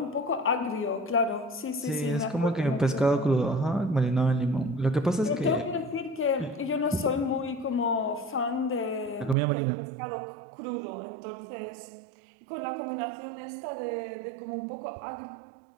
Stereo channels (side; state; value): left; drops out; at 9.3 s